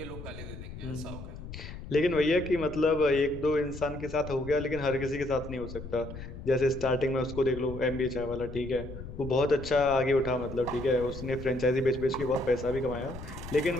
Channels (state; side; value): noise; left; rumble, 11 dB below the sound